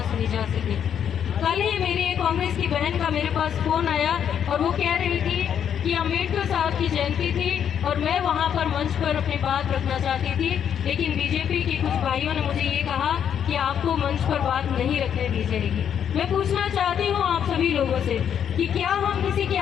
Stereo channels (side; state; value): right; quieter; 8.7 dB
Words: सुनी जा सके। कल ही मेरी एक कांग्रेस की बहन का मेरे पास फ़ोन आया और वो कह रही थी कि अम्बेडकर साहब की जयंती थी और मैं वहाँ पर मंच पर अपनी बात रखना चाहती थी, लेकिन बीजेपी के कुछ भाइयों ने मुझे ये कहा कि आपको मंच पर बात नहीं रखने दी जाएगी। मैं पूछना चाहती हूँ आप सभी लोगों से कि क्या हम किसी की